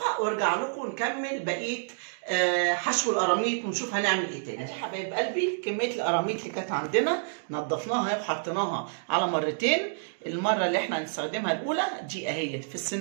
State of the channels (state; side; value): silent; left; digital silence